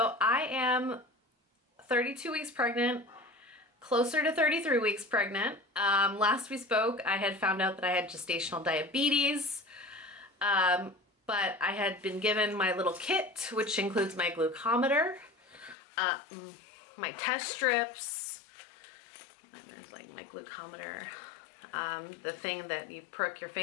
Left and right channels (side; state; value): right; drops out; at 15.8 s